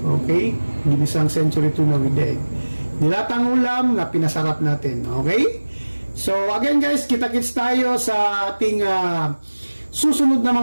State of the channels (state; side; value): inverted; both; correlation -1.00